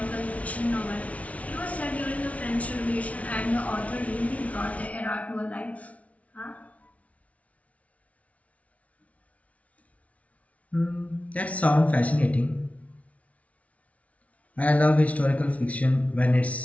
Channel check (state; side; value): late; right; 0.066 ms